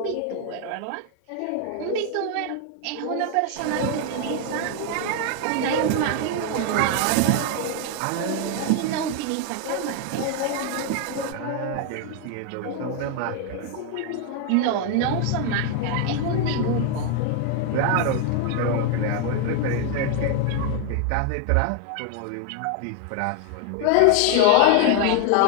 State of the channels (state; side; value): different; both; correlation 0.00